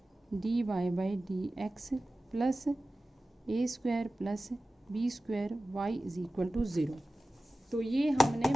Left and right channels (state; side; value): normal; both; correlation 0.96